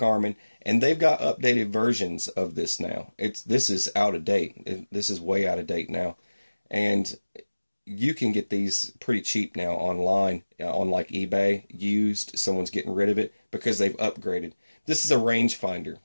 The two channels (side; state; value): both; inverted; correlation -1.00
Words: and they've got updated versions of this now. This is out of date. This is way out of date now, and you can get these pretty cheap now online on like eBay, used. Someone's getting rid of it because they've upgraded. This is a rangefinder